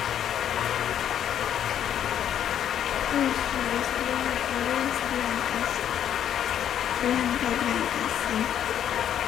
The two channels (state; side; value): quieter; right; 9.9 dB